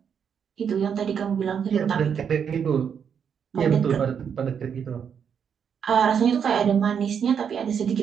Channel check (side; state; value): left; quieter; 7.5 dB